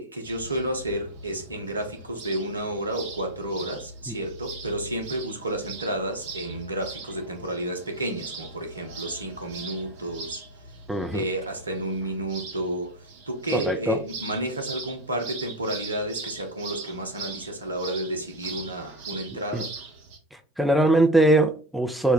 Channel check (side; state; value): both; normal; correlation 0.17